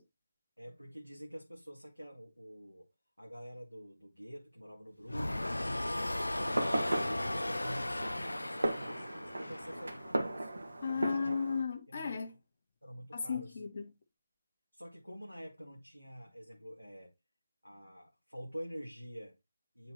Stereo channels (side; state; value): both; inverted; correlation -0.94